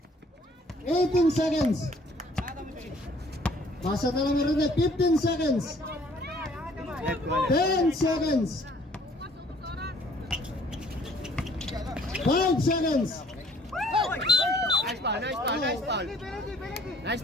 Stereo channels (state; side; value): normal; both; correlation 0.58